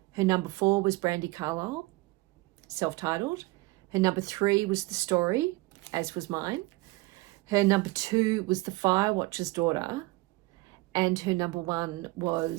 Her number 4 was Brandi Carlile, self-titled. Her number 3 was The Story, as was mine. Her number 2 was The Firewatcher's Daughter. And her number 1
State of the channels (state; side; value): quieter; left; 21.9 dB